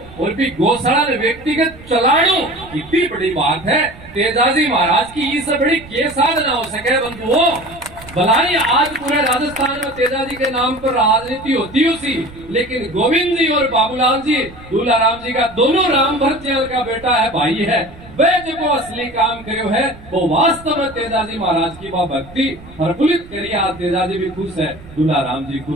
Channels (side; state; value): right; noise; rumble, 19 dB below the sound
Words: और भी गौशाला ने व्यक्तिगत चलाणू, कितनी बड़ी बात है। तेजाजी महाराज की इससे बड़ी के साधना हो सके बंधुओं। भलाई आज पूरे राजस्थान में तेजाजी के नाम पर राजनीति होती उसी, लेकिन गोविंद जी और बाबूलाल जी दूल्हा राम जी का दोनों राम भरत का बेटा है, भाई है। वे जो असली काम करो है वो वास्तव में तेजाजी महाराज की भक्ति प्रफुल्लित करिए। आज तेजाजी भी खुश है, दूल्हा राम जी